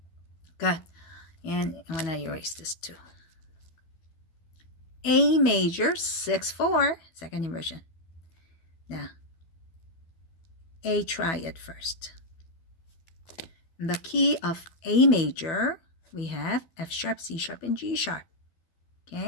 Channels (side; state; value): right; late; 12 ms